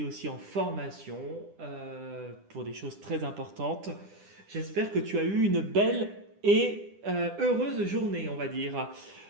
aussi en formation pour des choses très importantes? J'espère que tu as eu une belle et heureuse journée, on va dire,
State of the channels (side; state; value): left; late; 10 ms